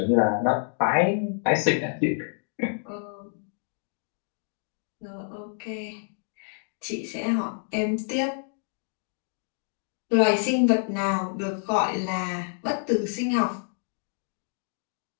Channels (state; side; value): silent; right; digital silence